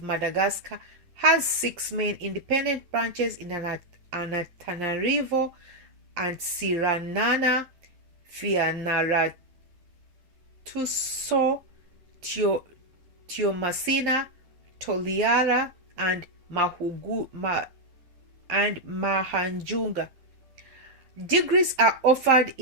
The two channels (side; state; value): left; late; 11 ms